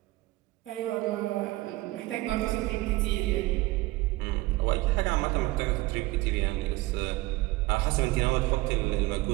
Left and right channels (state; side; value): quieter; left; 20.0 dB